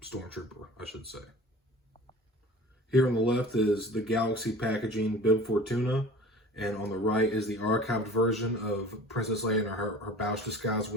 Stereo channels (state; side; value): normal; both; correlation 0.42